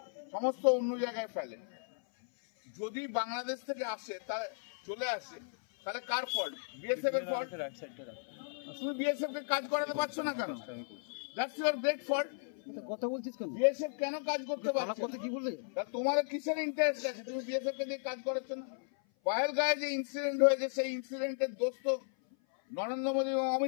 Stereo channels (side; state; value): right; silent; 54 dB below the other